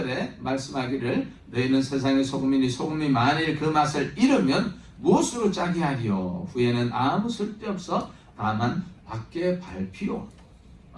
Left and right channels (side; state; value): both; identical; correlation 1.00